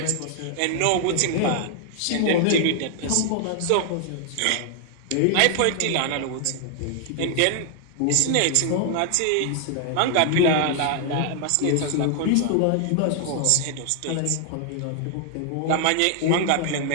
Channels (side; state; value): both; different; correlation 0.00